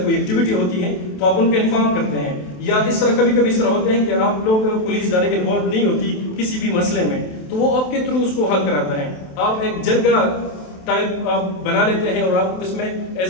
कोई एक्टिविटी होती है तो आप उनको इन्फॉर्म करते हैं, या इस तरह कभी कभी इस तरह होते हैं कि आप लोग पुलिस डायरेक्ट इन्वॉल्व नहीं होती किसी भी मसले में, तो वो आपके थ्रू उसको हल कराता है। आप एक जरगा टाइप आप बना लेते हैं और आप इसमें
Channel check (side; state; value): right; late; 27 ms